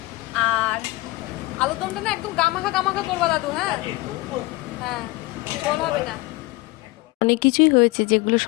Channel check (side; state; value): right; quieter; 21.0 dB